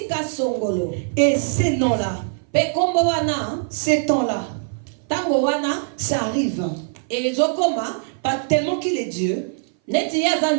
Et ces noms-là, ces temps-là, ça arrive. Pas tellement qu'il est Dieu,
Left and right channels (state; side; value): silent; left; 60 dB below the other